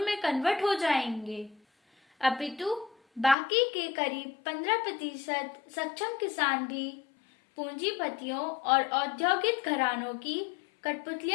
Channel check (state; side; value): drops out; right; at 3.4 s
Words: में कन्वर्ट हो जाएंगे, अपितु बाकी के करीब 15% सक्षम किसान भी पूंजीपतियों और औद्योगिक घरानों की